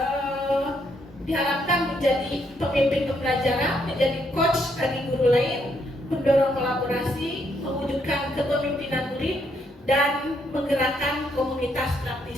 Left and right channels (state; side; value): normal; both; correlation 0.74